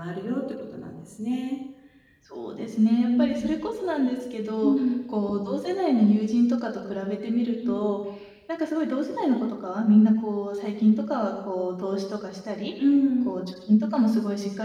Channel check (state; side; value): identical; both; correlation 1.00